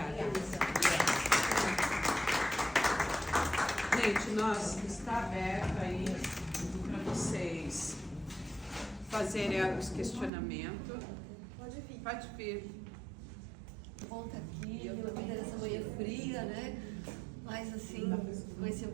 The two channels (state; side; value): drops out; left; at 10.3 s